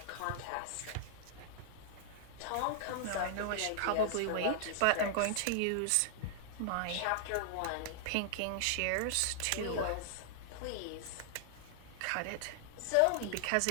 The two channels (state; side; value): different; both; correlation -0.01